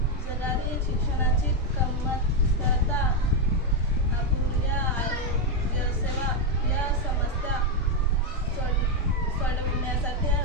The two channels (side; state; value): both; normal; correlation 0.03